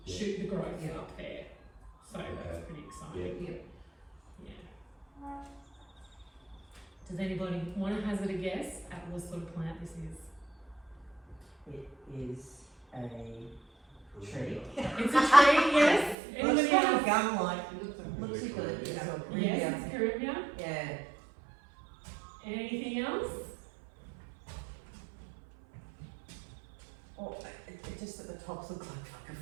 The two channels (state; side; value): drops out; left; at 16.2 s